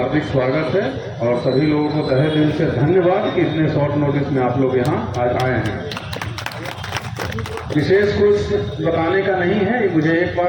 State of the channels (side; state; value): both; identical; correlation 1.00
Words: स्वागत है और सभी लोगों को तहे दिल से धन्यवाद कि इतने शॉर्ट नोटिस में आप लोग यहाँ आज आए हैं। विशेष कुछ बताने का नहीं है, मुझे एक